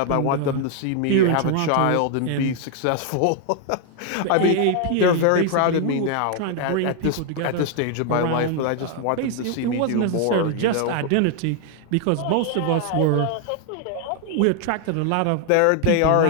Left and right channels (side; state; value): both; different; correlation 0.00